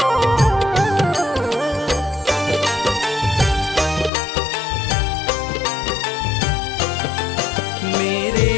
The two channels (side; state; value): right; drops out; at 4.1 s